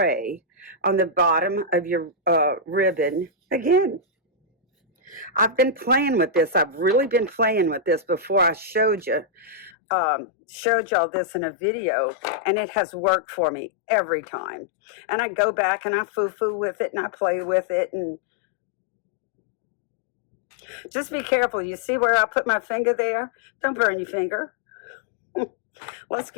on the bottom of your ribbon again. I've been playing with this. I've really been playing with this before I showed y'all this in a video, and it has worked for me every time. And I go back and I foo-foo with it and I play with it, and just be careful. You see where I put my finger there? Don't burn your finger. Let's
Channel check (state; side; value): drops out; right; at 9.7 s